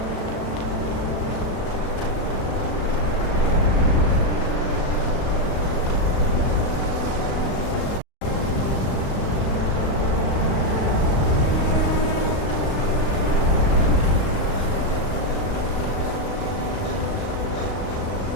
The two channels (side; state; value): right; late; 36 ms